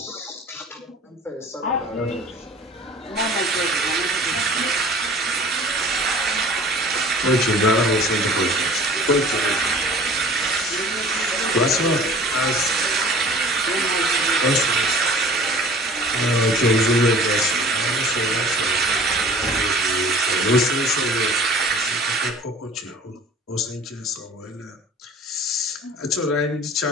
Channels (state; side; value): normal; both; correlation 0.46